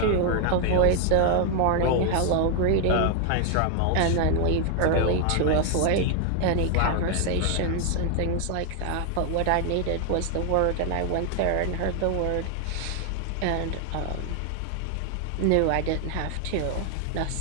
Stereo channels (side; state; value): both; different; correlation 0.00